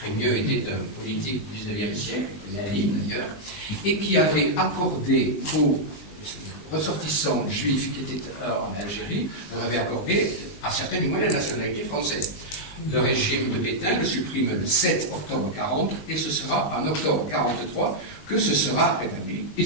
était un politique du XIXe siècle, Lénine d'ailleurs, et qui avait accordé aux ressortissants juifs qui étaient en Algérie, leur avait accordé à certains du moins la nationalité française. Le régime de Pétain le supprime le 7 octobre 40 et ce sera en octobre 43 que ce sera rétabli. Et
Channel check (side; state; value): right; late; 19 ms